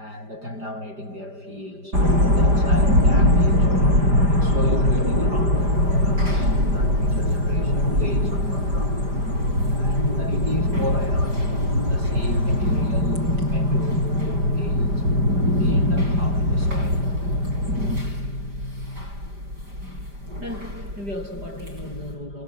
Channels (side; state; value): left; late; 5.0 ms